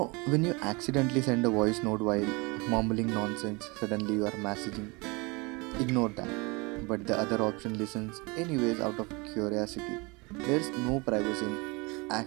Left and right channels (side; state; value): left; quieter; 27.4 dB